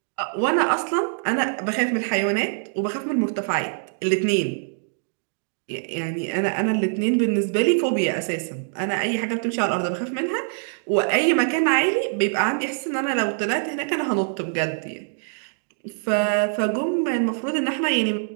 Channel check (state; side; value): silent; left; digital silence